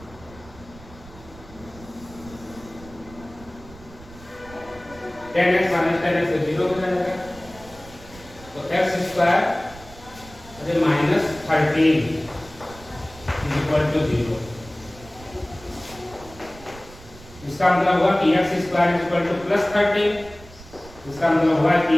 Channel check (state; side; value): noise; right; rumble, 20 dB below the sound